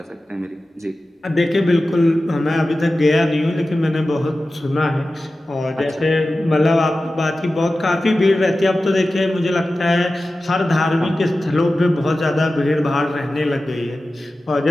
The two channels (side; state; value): both; normal; correlation 0.94